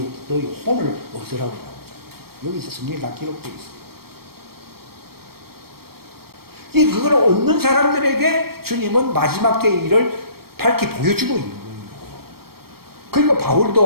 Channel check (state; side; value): late; left; 0.94 ms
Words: 너희 혼을 얻으라고 나오잖아요. 여기서 성경에 다 기록되어 있어요. 그걸 얻는 사람들에게 주님은 마지막 때의 일을 밝히 보여주고 있는 거예요. 그러니까